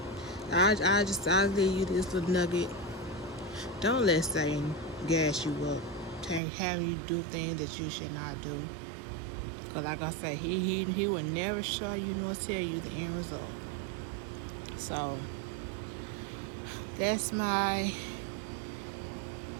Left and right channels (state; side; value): drops out; left; at 6.4 s